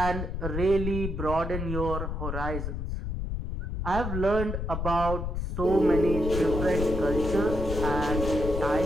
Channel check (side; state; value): left; noise; rumble, 3 dB below the sound